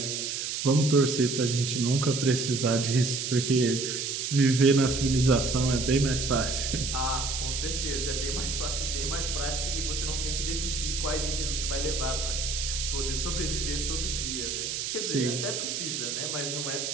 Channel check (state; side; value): noise; right; hiss, 3 dB below the sound